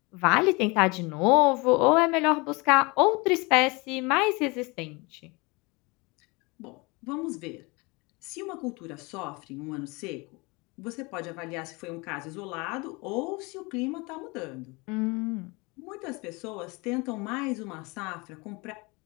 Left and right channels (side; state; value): right; quieter; 26.6 dB